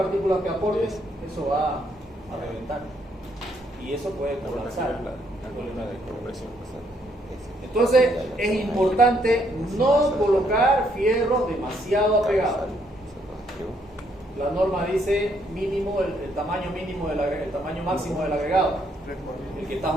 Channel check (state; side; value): normal; both; correlation 0.71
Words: que aporten, eso va a reventar. Y eso puede colapsar. Entonces es importante no colocar fierros demasiado apegados. La norma dice mínimo, el tamaño mínimo el tamaño máximo del agregado, el que estás